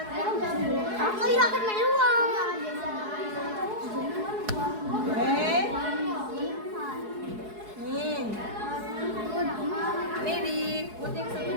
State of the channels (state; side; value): late; left; 4.7 ms